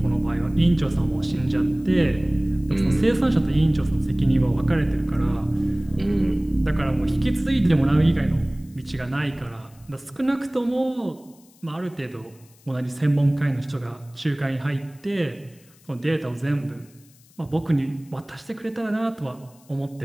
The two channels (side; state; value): left; noise; hiss, 28 dB below the sound